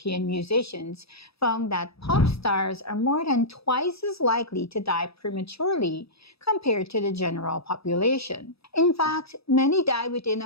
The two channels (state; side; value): late; right; 0.77 ms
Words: musicians found that pop stars are more than twice as likely to die prematurely compared to the general population. In fact, many die within